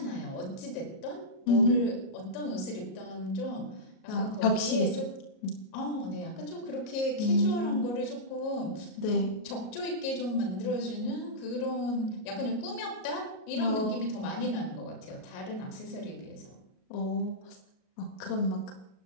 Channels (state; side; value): late; right; 37 ms